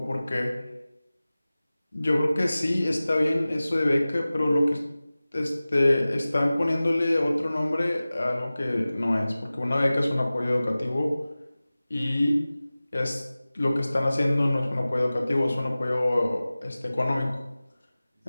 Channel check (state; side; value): inverted; both; correlation -0.97